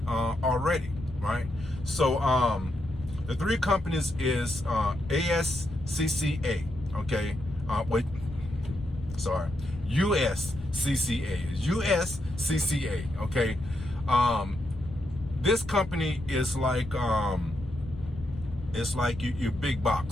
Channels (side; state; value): left; noise; rumble, 13 dB below the sound